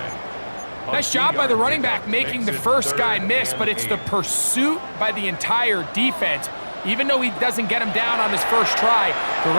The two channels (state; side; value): inverted; both; correlation -1.00